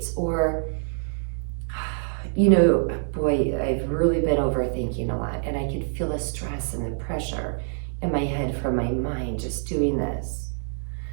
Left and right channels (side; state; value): left; silent; digital silence